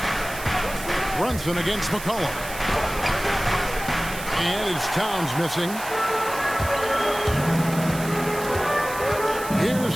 Brunson against McCollum. And it's Towns missing.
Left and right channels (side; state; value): right; noise; hiss, 12 dB below the sound